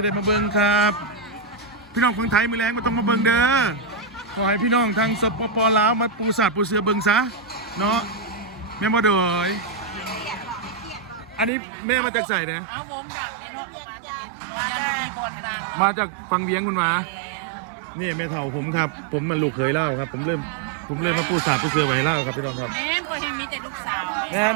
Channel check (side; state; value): left; drops out; at 11.5 s